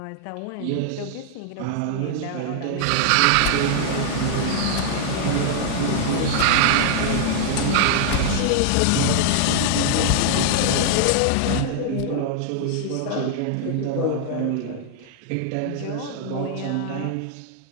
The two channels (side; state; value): both; different; correlation 0.00